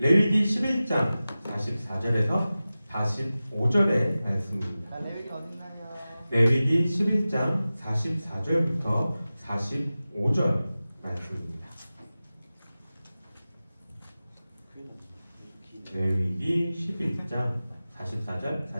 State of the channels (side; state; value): both; inverted; correlation -0.96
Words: 11장 44절에서 45절의 말씀입니다. 레위기 어딨나요? 레위기 11장 44절부터 45절 말씀입니다. 레위기 11장 44절